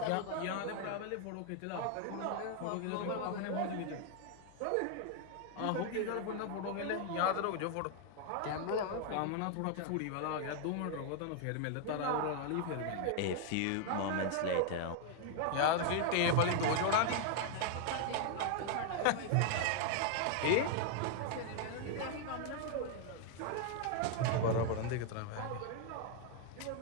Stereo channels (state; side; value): different; both; correlation 0.00